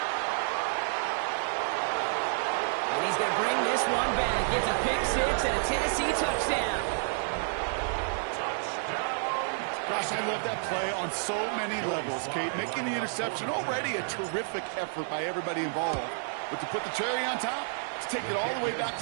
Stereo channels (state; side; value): silent; left; digital silence